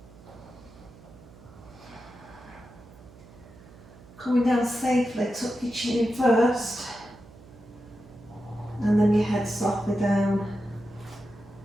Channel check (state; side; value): noise; right; hum, 21 dB below the sound